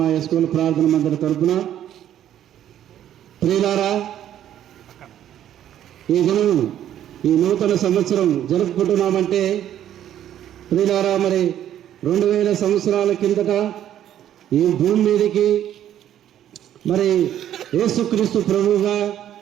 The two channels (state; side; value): quieter; left; 11.1 dB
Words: ఎస్కోల ప్రార్థన మందిర తరపున. ప్రియులారా, ఈ దినం ఈ నూతన సంవత్సరం జరుపుకుంటున్నామంటే ప్రియులారా, మరి 2000 సంవత్సరాల కిందట ఈ భూమి మీదకి మరి యేసుక్రీస్తు ప్రభువుగా